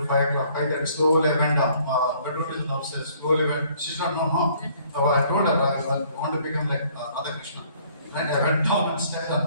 5 o'clock, 5:30, slowly I went down. Bedroom is downstairs, slowly went. She's not known, huh? So I told her I want to become like Radhakrishnan. Right? I went down and stayed on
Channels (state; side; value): inverted; both; correlation -0.61